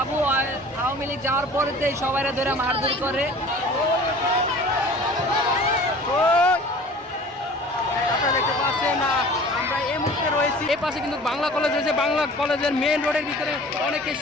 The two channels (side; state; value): both; normal; correlation 0.44